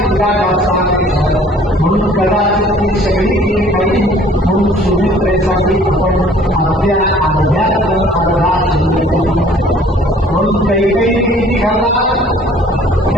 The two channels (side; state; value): both; normal; correlation 0.54